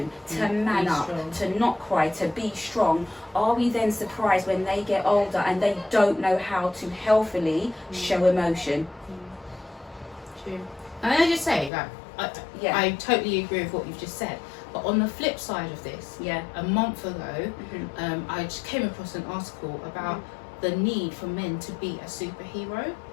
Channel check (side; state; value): right; drops out; at 11.7 s